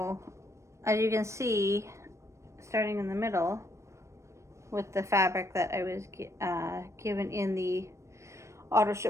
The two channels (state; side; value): late; left; 0.14 ms